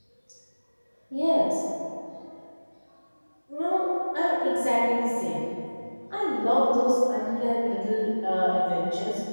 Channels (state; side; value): inverted; both; correlation -1.00